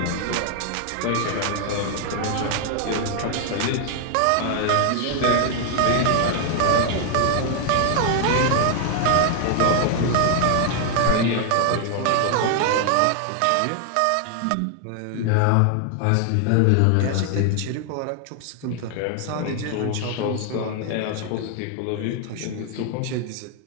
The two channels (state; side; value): different; both; correlation 0.00